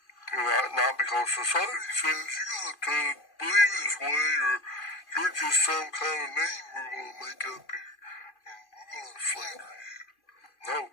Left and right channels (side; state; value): right; late; 2.5 ms